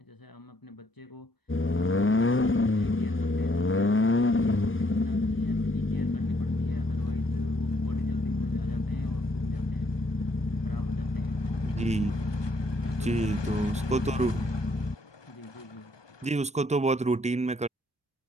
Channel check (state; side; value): normal; both; correlation 0.69